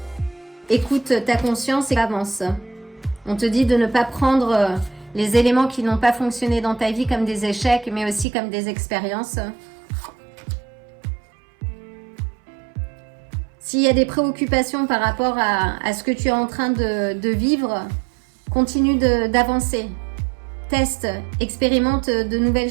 Écoute ta conscience et avance. On te dit de ne pas prendre les éléments qui n'ont pas fonctionné dans ta vie comme des échecs, mais aussi comme des expériences. S'il y a des préoccupations par rapport à ce que tu es en train de vivre, continue d'avancer. Teste, expérimente de nouvelles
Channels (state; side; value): drops out; left; at 8.2 s